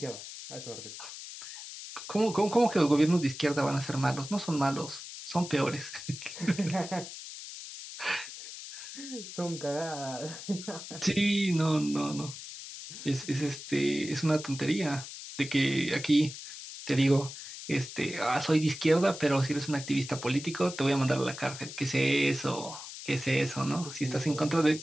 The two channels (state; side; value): noise; left; hiss, 11 dB below the sound